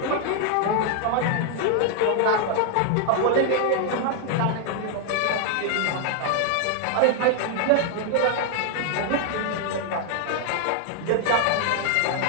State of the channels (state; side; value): different; both; correlation 0.00